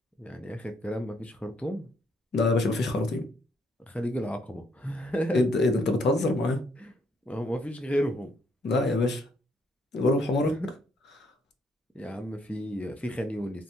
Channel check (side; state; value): both; normal; correlation 0.71